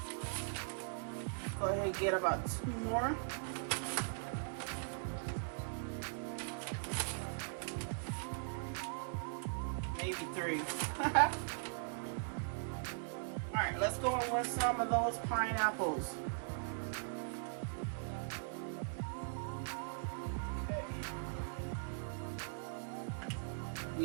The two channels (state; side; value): silent; left; digital silence